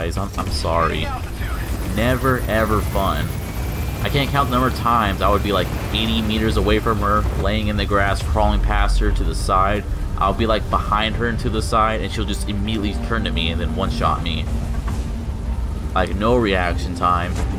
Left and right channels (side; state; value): both; identical; correlation 1.00